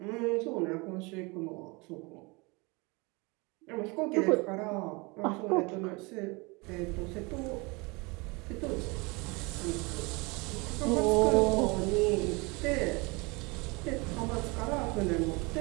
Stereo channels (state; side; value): quieter; left; 27.2 dB